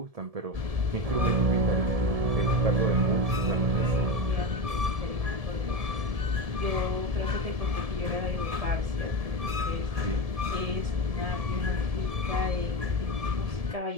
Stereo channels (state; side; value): late; left; 1.7 ms